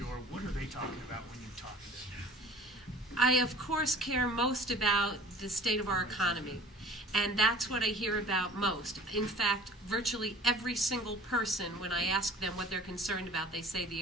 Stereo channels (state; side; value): normal; both; correlation 0.47